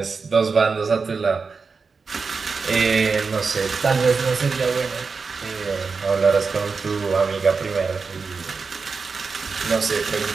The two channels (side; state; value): left; quieter; 4.8 dB